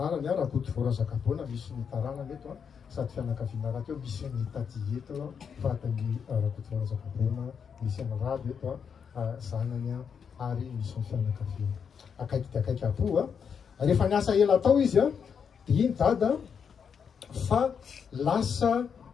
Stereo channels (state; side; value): quieter; right; 6.8 dB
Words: Rakoto Vorazakabona misy ny taranany eto sady fianakaviana raha teo misy ny tady eto vatany Rakoto Vorazakabona misy ny rado eto zanany ary misy ny fianakaviana akaiky dia akaiky apo rehefa niasa ela tao izy dia iny dada fa lasa